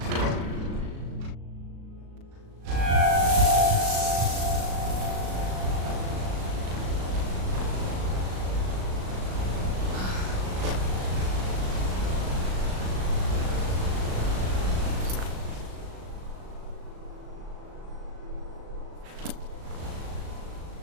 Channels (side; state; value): left; late; 37 ms